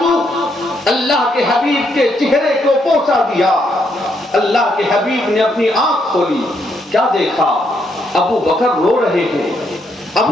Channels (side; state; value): both; normal; correlation 0.76